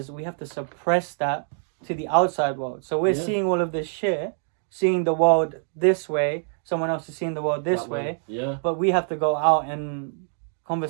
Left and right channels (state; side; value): silent; left; 62 dB below the other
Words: we have to suppress that to the outside world. So we're Yeah. seeing all of this shit, seeing the world this way, someone else is seeing the world this that way, Yeah. but we have to go out and